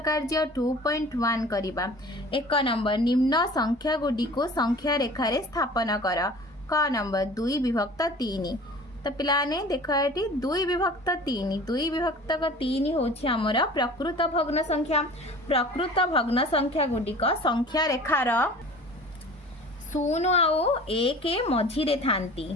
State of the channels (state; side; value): normal; both; correlation 0.43